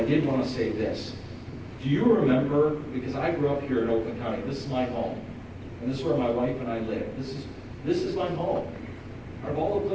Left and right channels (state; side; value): identical; both; correlation 1.00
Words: I did want to say this. Do you remember, because I grew up here in Oakland County, this is my home. And this is where my wife and I live. This is my home. Out of all the